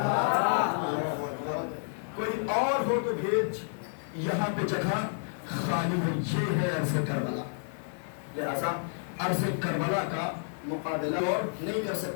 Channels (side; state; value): right; silent; 58 dB below the other